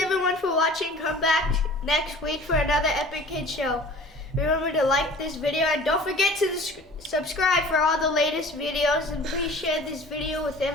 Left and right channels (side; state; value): both; normal; correlation 0.45